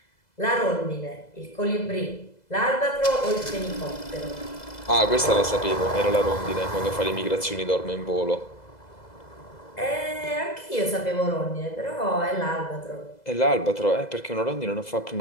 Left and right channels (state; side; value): late; right; 2.0 ms